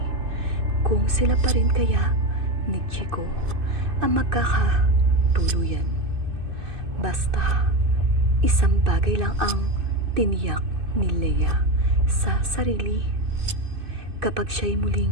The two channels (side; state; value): left; late; 2.6 ms